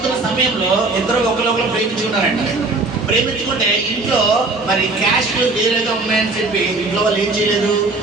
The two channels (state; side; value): quieter; left; 3.3 dB